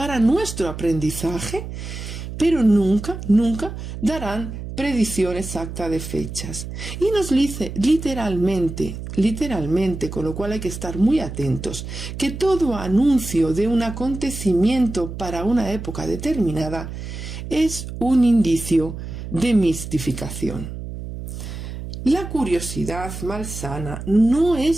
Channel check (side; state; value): right; noise; hum, 8 dB below the sound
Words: nuestro aprendizaje, pero nunca darán predicción exacta de fechas. Y nos dice literalmente, con lo cual hay que estar muy atentos, que todo anuncio de un acontecimiento para una época determinada es un indicio de mistificación. La curiosidad malsana no